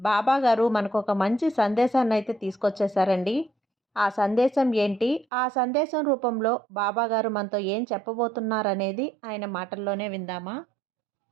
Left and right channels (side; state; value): left; drops out; at 5.2 s